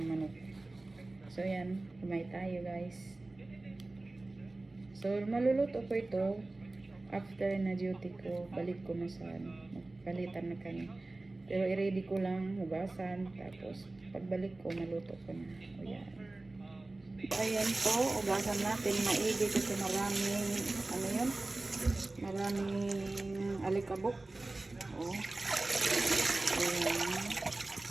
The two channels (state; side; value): quieter; left; 3.0 dB